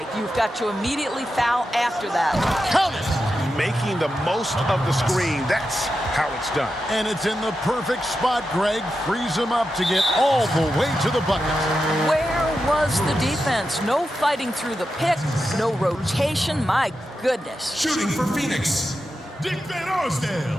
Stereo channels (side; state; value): both; normal; correlation 0.89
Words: You've got to immediately foul after that. Count it! Making the most of the screen. That's how it's done. And it's in the perfect spot, Greg. Frees him up to get all the way to the bucket. Where was the defense? No fighting through the pick, no rotation. My goodness. Shooting for Phoenix, Dick Van